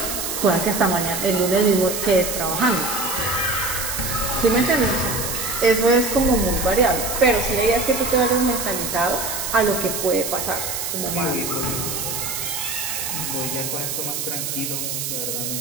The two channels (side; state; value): right; noise; hiss, 3 dB below the sound